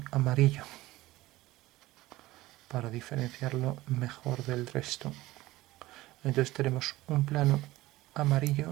amarillo para diferenciarlo mejor del resto. Entonces tenemos un plano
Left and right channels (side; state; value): left; quieter; 17.9 dB